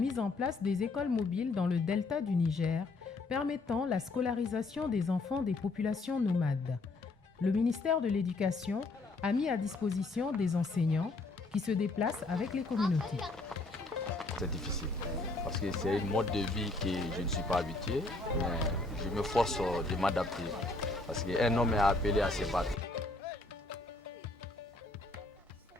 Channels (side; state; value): right; quieter; 3.2 dB